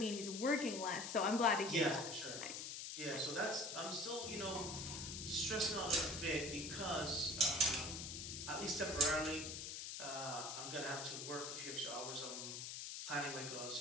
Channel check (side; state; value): left; noise; hiss, 6 dB below the sound